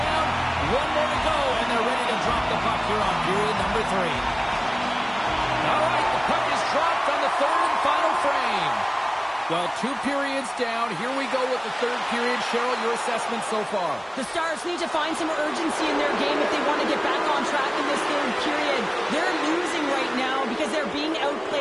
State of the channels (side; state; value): both; identical; correlation 1.00